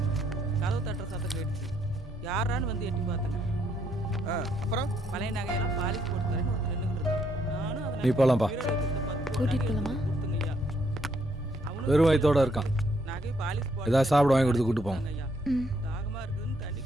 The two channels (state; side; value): normal; both; correlation 0.72